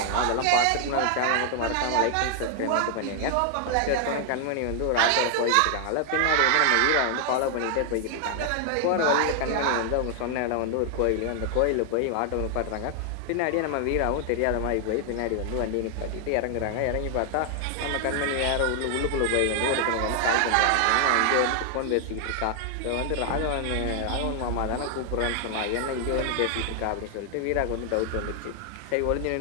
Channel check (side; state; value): both; different; correlation 0.00